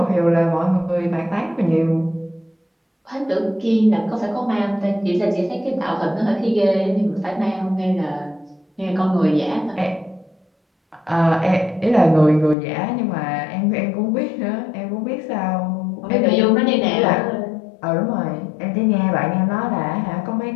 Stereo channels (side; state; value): right; drops out; at 12.6 s